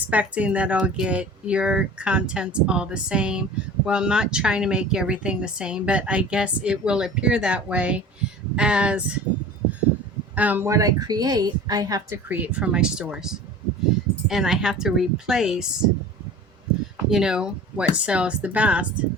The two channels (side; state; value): both; normal; correlation 0.40